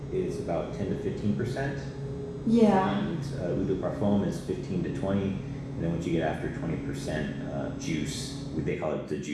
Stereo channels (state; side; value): identical; both; correlation 1.00